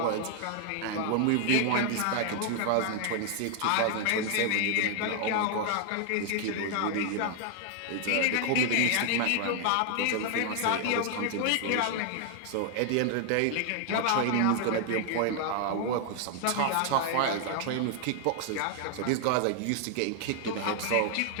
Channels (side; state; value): both; different; correlation 0.00